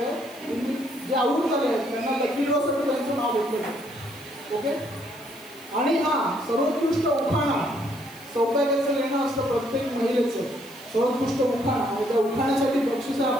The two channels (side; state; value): left; noise; hiss, 22 dB below the sound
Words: आहे. तुम्ही जे आवडून झाले आहेत त्यांना लकी ड्रॉसाठी त्यांचं नाव घेतलं आहे. ओके. आणि हां सर्वोत्कृष्ट उखाणा सौभाग्याचं लेणं असतं प्रत्येक महिलेचं. सर्वोत्कृष्ट उखाणा आणि त्या उखाण्यासाठी बक्षीस आहे